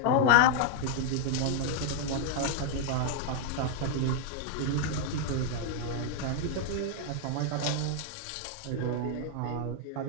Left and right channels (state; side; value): different; both; correlation 0.00